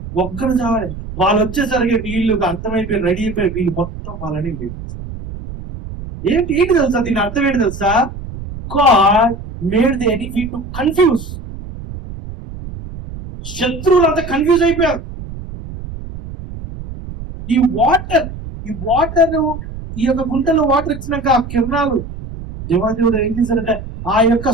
చావాలి. వాళ్ళు వచ్చేసరికి వీళ్ళు అర్థమైపోయి రెడీ అయిపోయి వీళ్ళు మొత్తం వాళ్ళని లేదు. ఏంటి తెలుసా? దీని అర్థం ఏంటి తెలుసా? God made the enemy to confuse. శత్రువులంతా కన్ఫ్యూజ్ అయిపోయారు. ఈ వాటర్ ఈ యొక్క గుంటలో వాటర్ ఇచ్చినాక ఆ కిరణాలు దేవాదేవుడు ఏం చేశారంటే ఆ యొక్క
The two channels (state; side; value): noise; right; rumble, 11 dB below the sound